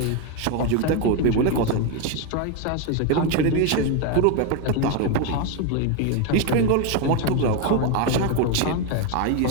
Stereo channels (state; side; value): different; both; correlation 0.02